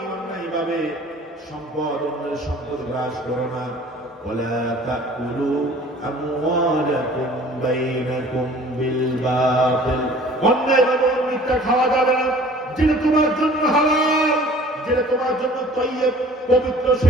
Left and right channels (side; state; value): both; normal; correlation 0.49